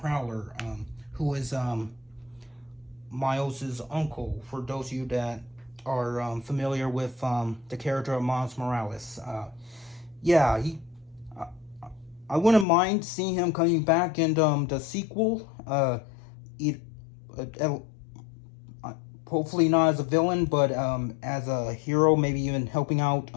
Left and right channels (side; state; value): right; drops out; at 12.7 s